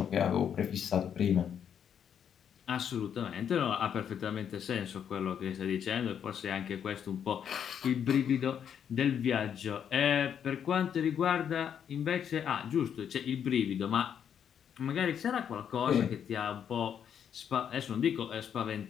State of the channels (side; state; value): right; quieter; 8.4 dB